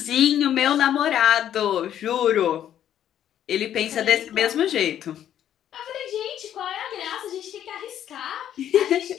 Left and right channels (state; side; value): quieter; right; 10.6 dB